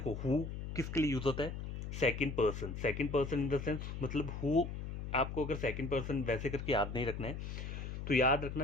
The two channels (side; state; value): left; noise; hum, 6 dB below the sound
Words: हु किसके लिए यूज होता है, second person. Second person in the sense, मतलब हु, आपको अगर सेकंड पर्सन वैसे करके याद नहीं रखना है, तो याद रखना